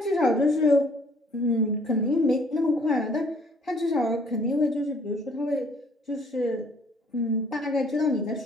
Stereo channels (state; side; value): normal; both; correlation 0.60